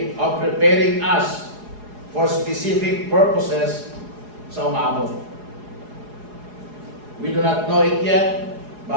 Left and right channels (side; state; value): left; late; 4.8 ms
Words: of preparing us for specific purposes sa umabot. We do not know it yet,